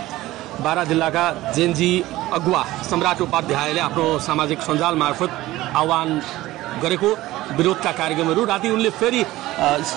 बारा जिल्लाका जेनजी अगुवा सम्राट उपाध्यायले आफ्नो सामाजिक सञ्जाल मार्फत आह्वान गरेको विरोधका कार्यक्रमहरू राति उनले फेरि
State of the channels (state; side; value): quieter; left; 17.0 dB